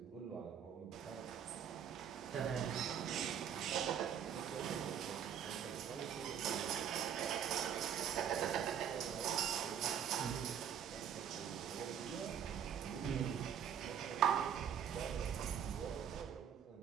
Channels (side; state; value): left; quieter; 8.7 dB